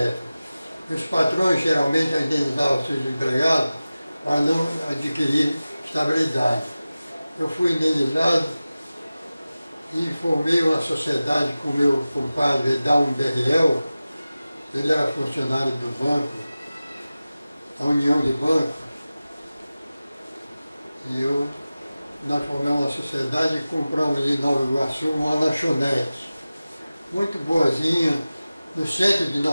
Os patrões geralmente indenizavam seus empregados para não adquirir estabilidade. Eu fui indenizado e formei uma sociedade com o meu compadre Edalmo Berriel. Ele era funcionário do banco, a União de Bancos, e nós formamos uma sociedade e compramos em Nova Iguaçu uma lanchonete, muito boazinha, no centro de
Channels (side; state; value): both; inverted; correlation -0.96